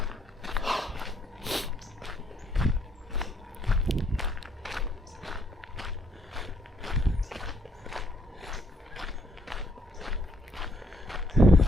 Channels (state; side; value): normal; both; correlation 0.69